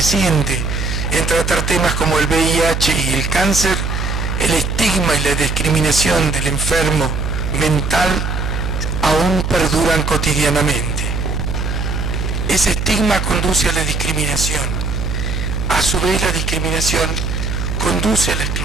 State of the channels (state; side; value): noise; right; hum, 2 dB below the sound